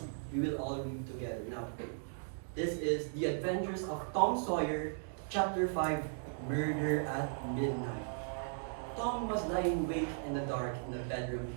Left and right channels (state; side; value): silent; left; digital silence